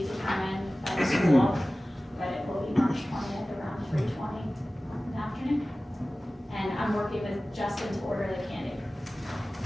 determined by the school, but it will be March 20th around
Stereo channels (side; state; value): both; normal; correlation 0.97